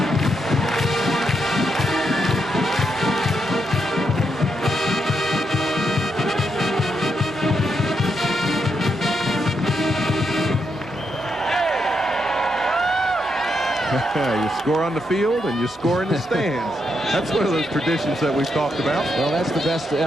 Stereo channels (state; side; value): normal; both; correlation 0.81